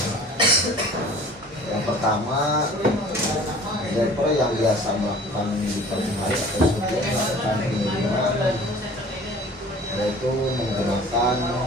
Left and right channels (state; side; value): normal; both; correlation 0.46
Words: Yang pertama, driver yang biasa melakukan di pagi hari atau sebelum melakukan pengiriman yaitu menggunakan